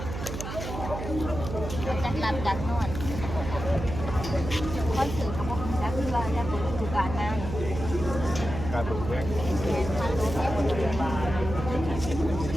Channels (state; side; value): noise; right; hum, 6 dB below the sound